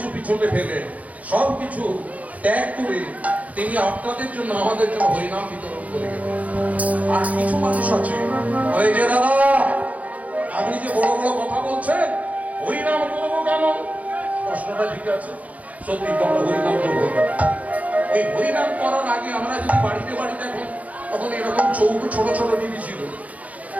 পিছনে ফেলে, সবকিছু ত্যাগ করে তিনি আপনাদের জন্য, আমাদের জন্য হরিনাম বিতরণ করে গেলেন। আর কিছু মানুষ আছে, এই যে দাদা আপনি যে বড় বড় কথা বলছেন, হরিনাম করবো কেন? প্রশ্নটা ঠিক আছে, সত্যি তো আমরা হরিনাম করবো কেন? এই হরিনাম করার আগে আমরা যদি বাড়িতে বাড়িতে এখন, তখন এরকম চৌকো ছোট ছোট টিভি ছিল,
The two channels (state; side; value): late; left; 0.070 ms